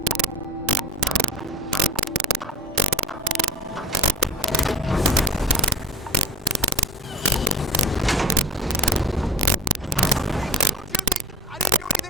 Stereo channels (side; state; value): both; normal; correlation 0.32